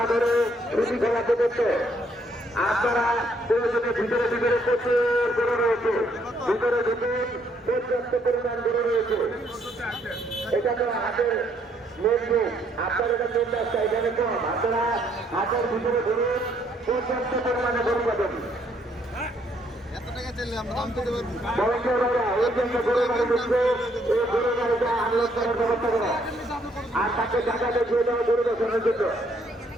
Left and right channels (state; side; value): normal; both; correlation 0.69